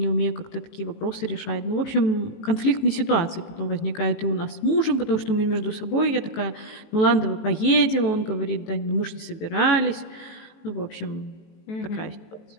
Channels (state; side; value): late; right; 18 ms